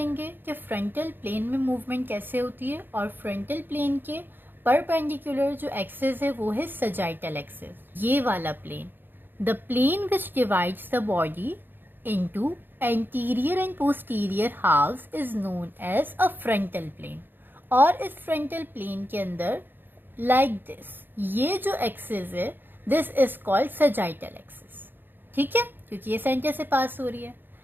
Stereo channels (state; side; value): late; left; 0.096 ms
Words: कि फ्रंटल प्लेन में मूवमेंट कैसे होती है, और फ्रंटल प्लेन के परपेंडिकुलर जो एक्सिस है वो है सजाइटल एक्सिस, ये वाला plane, the plane which divides the body into anterior and posterior halves is known as a frontal plane। और इस frontal plane के अंदर like this, ये जो axis है this is called sagittal axis, ठीक है, क्योंकि ये सेंटर से पास हो रही है।